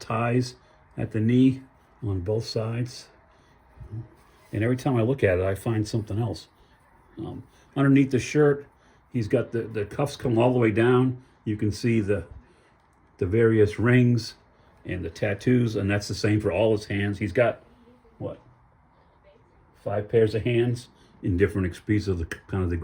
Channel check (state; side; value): identical; both; correlation 1.00